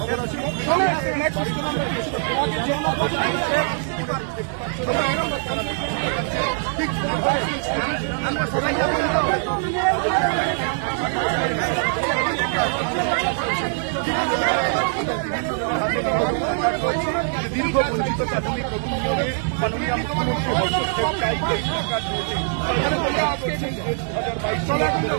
আসে। আমরা সবাই দীর্ঘ বঞ্চিত প্রাথমিক নিয়োগে মাননীয় মুখ্যমন্ত্রী হস্তক্ষেপ চাই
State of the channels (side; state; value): left; silent; 58 dB below the other